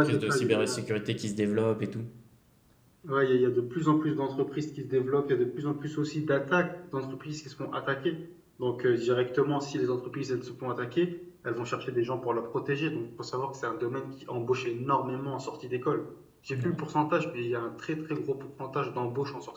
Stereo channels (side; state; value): both; identical; correlation 1.00